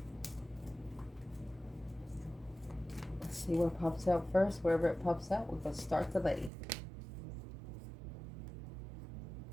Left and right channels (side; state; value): left; drops out; at 6.5 s